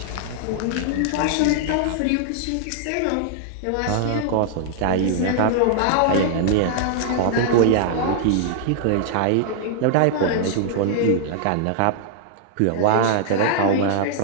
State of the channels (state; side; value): different; both; correlation -0.01